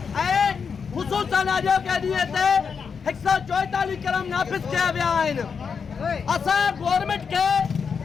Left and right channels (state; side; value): quieter; right; 6.1 dB